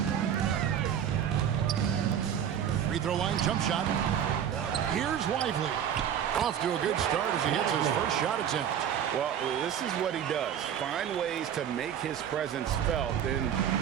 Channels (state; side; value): quieter; left; 9.1 dB